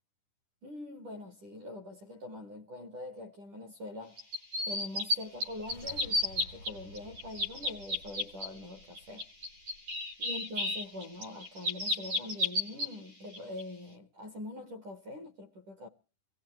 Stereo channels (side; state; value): left; late; 10 ms